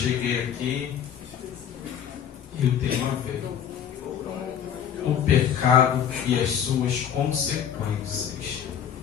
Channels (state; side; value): quieter; right; 8.9 dB